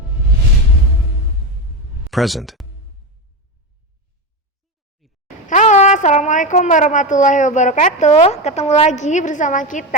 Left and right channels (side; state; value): both; normal; correlation 0.16